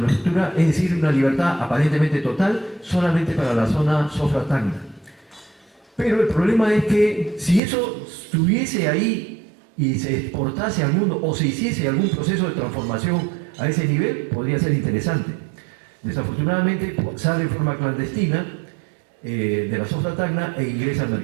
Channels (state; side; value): drops out; left; at 7.6 s